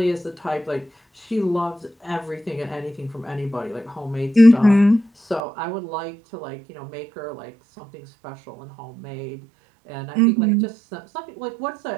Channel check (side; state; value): left; drops out; at 5.4 s